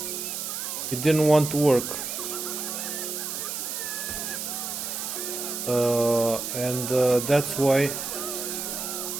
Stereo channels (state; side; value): noise; right; hiss, 4 dB below the sound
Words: it didn't want to work. And that's why